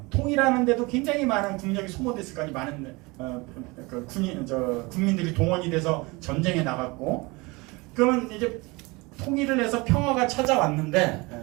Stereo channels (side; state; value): left; quieter; 25.1 dB